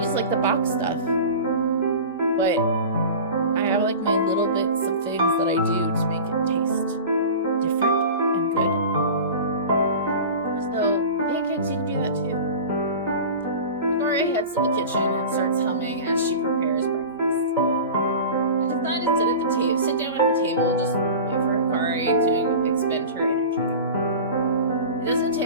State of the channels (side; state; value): both; inverted; correlation -0.34